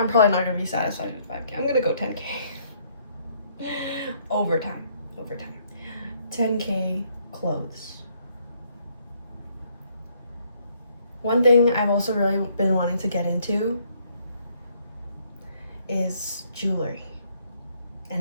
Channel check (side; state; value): both; inverted; correlation -0.68